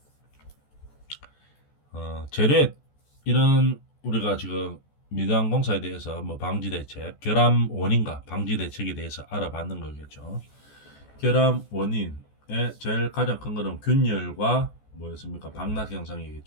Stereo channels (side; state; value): right; late; 14 ms